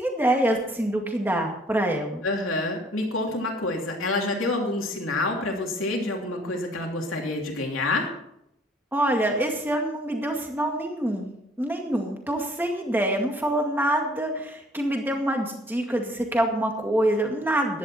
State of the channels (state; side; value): normal; both; correlation 0.58